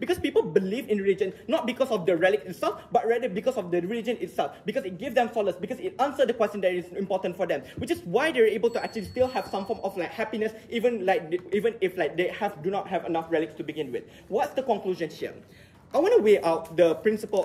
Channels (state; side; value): identical; both; correlation 1.00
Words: people believe in religion not because of the relic itself, but rather because of the religion itself, because it gives them solace, because it answers the question that is important for them, which is why they're able to actually still have some form of like happiness, even if like they do not have enough relics to begin with. What's the conclusion here? I want to weigh out the